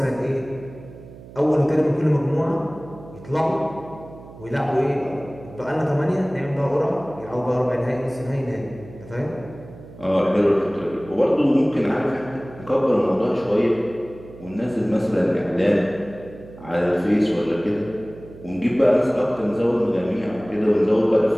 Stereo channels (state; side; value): noise; right; hum, 18 dB below the sound